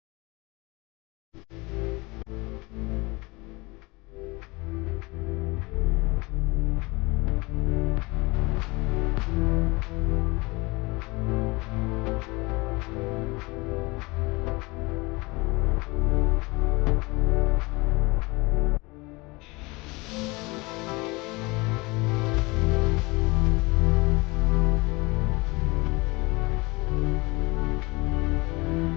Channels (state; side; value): quieter; right; 24.5 dB